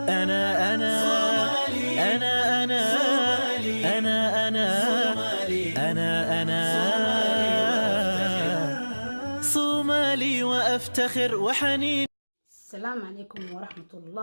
أنا أنا أنا أنا أنا أنا أنا صومالي وأفتخر وحنين. السلام عليكم ورحمة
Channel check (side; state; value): both; inverted; correlation -1.00